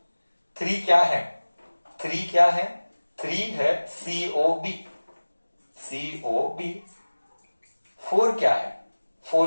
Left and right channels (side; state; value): both; inverted; correlation -1.00